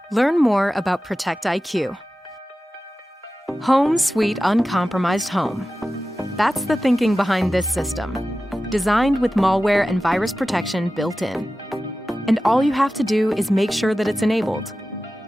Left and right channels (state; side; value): normal; both; correlation 0.94